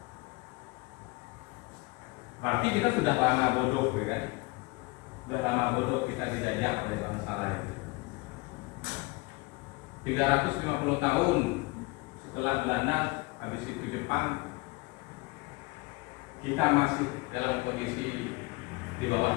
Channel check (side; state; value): right; quieter; 25.6 dB